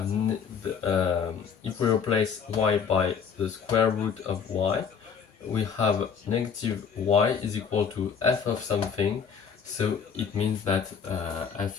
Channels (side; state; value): right; quieter; 6.8 dB